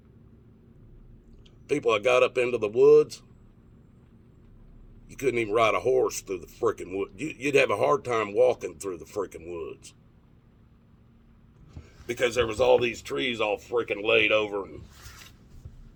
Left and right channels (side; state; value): both; identical; correlation 1.00